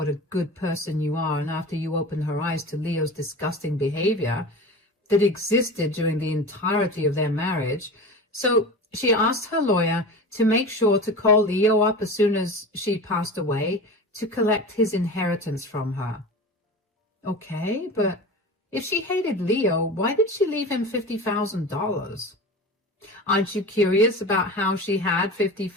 a good person you are and after you opened her eyes to Leo's disgusting behavior that existed during the entirety of their marriage. So she asked her lawyer to make sure to call Leo up as soon as she passed away to collect his inheritance from her. Okay, but if she hated Leo, why did she leave him $50,000? Aren't you curious about how she had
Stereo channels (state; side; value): normal; both; correlation 0.31